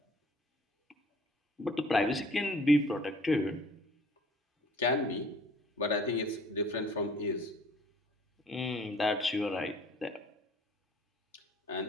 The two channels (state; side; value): normal; both; correlation 0.53